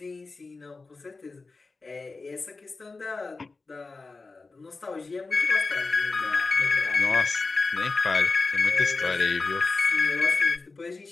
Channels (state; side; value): quieter; right; 3.8 dB